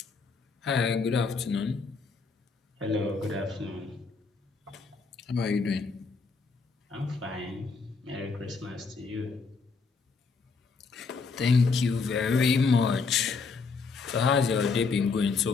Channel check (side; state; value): right; quieter; 4.7 dB